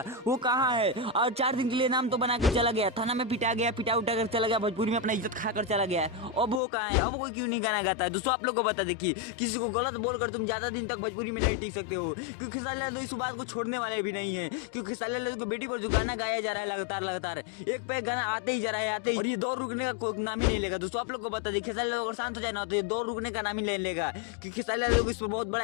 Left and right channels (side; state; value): right; drops out; at 6.6 s